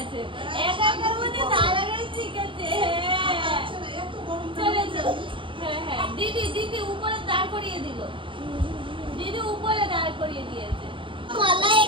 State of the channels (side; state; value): left; late; 0.25 ms